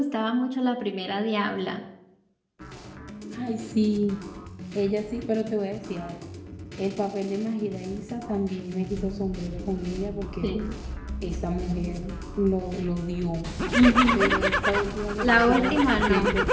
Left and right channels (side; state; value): both; identical; correlation 1.00